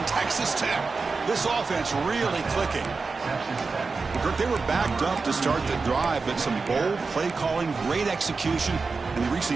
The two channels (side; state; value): left; quieter; 4.3 dB